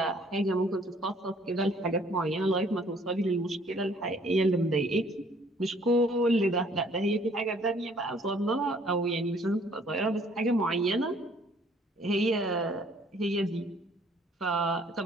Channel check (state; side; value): normal; both; correlation 0.59